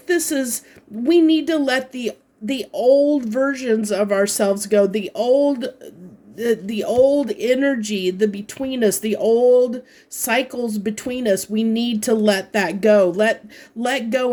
we need to let the old versions of ourselves go, the old energy, the between us, the old cycles between us. We need to let that go. Let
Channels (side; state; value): both; identical; correlation 1.00